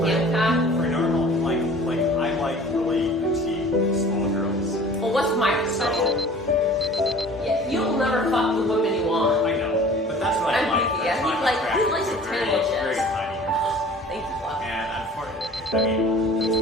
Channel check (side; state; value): both; normal; correlation 0.46